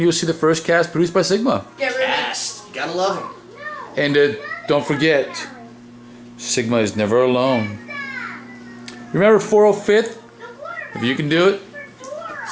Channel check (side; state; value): both; identical; correlation 1.00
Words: you'll see the first cast produced by Sigma. Cast. You gotta love them. And don't forget, Sigma is never alone. Remember 405th? If you can do it,